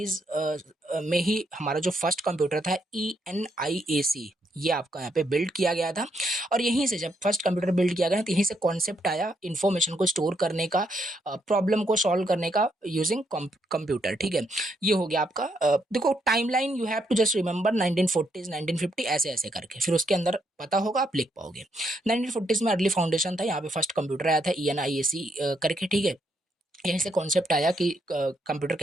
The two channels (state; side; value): normal; both; correlation 0.76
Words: में ही हमारा जो फर्स्ट कंप्यूटर था ENIAC, ये आपका यहाँ पे बिल्ड किया गया था। और यहीं से जब फर्स्ट कंप्यूटर बिल्ड किया गया तो यहीं से कॉन्सेप्ट आया इन्फॉर्मेशन को स्टोर करने का, प्रॉब्लम को सॉल्व करने का यूजिंग कंप्यूटर, ठीक है। ये हो गया आपका देखो timeline, you have to just remember 1940s 1950 ऐसे ऐसे करके, फिर उसके अंदर पता होगा आप लिख पाओगे। 1940s में अर्ली फाउंडेशन था, यहाँ पे फर्स्ट कंप्यूटर आया था ENIAC करके, ठीक है। यहीं से कॉन्सेप्ट आया कि कंप्यूटर